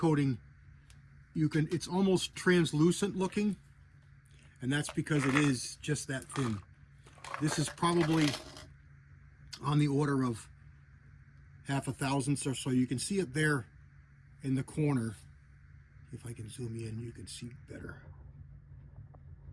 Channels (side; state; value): both; identical; correlation 1.00